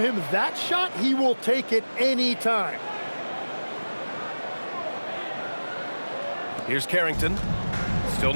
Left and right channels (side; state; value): both; inverted; correlation -1.00